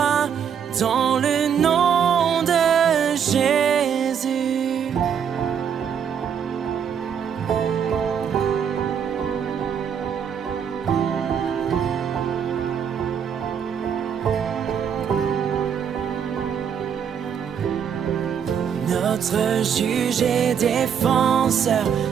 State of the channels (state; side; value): quieter; left; 7.8 dB